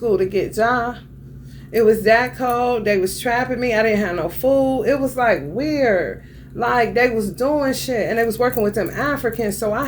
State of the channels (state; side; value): identical; both; correlation 1.00